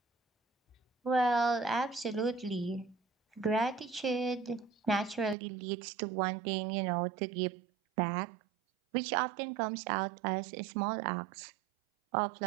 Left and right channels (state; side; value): drops out; left; at 5.4 s